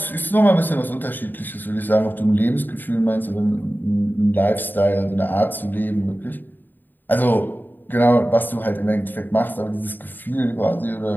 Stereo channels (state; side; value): late; right; 0.091 ms